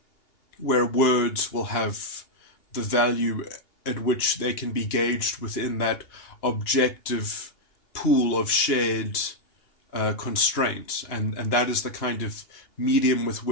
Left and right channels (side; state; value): right; late; 2.9 ms